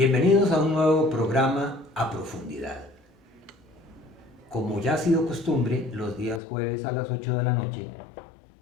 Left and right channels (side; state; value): right; drops out; at 6.4 s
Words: a un nuevo programa A Profundidad. Como ya ha sido costumbre, los días jueves a las 8 de la noche,